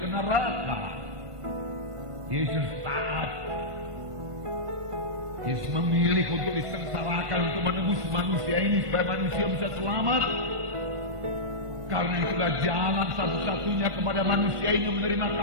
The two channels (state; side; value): late; left; 1.5 ms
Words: neraka. Yesus taat. Yesus memilih untuk disengsarakan untuk menebus manusia ini supaya manusia bisa selamat. Karena itulah jalan satu-satunya kepada manusia ini menerima